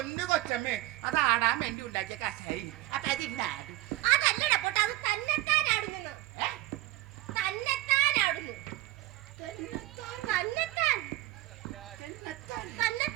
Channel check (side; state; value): left; quieter; 16.7 dB